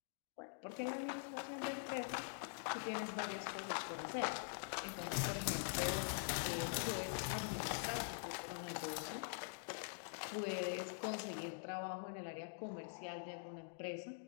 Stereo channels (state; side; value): silent; right; digital silence